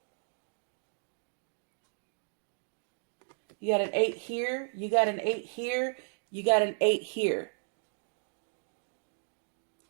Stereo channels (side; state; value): left; silent; 55 dB below the other